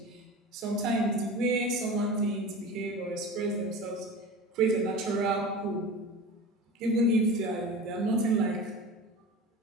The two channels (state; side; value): normal; both; correlation 0.32